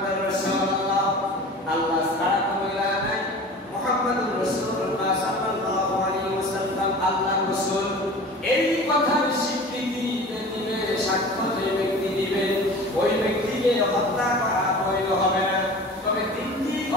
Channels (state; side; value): normal; both; correlation 0.39